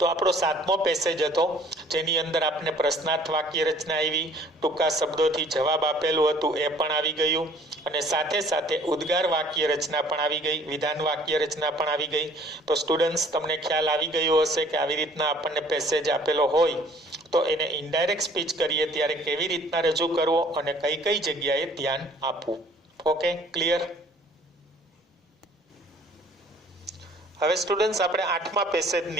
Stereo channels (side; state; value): both; normal; correlation 0.55